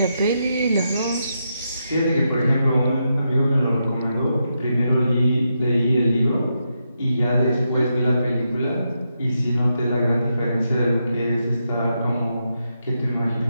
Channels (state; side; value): inverted; both; correlation -0.84